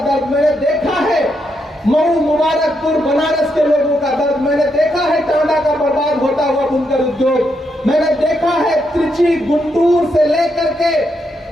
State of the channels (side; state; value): both; normal; correlation 0.80